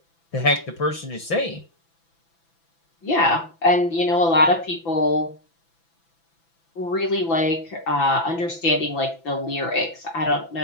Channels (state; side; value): late; right; 6.0 ms